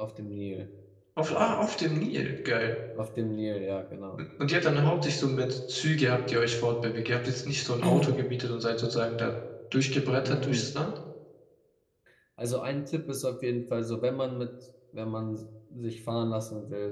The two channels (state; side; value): identical; both; correlation 1.00